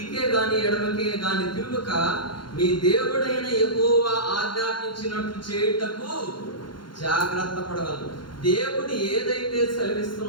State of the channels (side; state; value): right; late; 0.72 ms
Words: గాని ఎడమకే గాని తిరుగుక మీ దేవుడైన యెహోవా ఆజ్ఞాపించినట్లు చేయుటకు జాగ్రత్త పడగలరు. దేవుడు ఏదైతే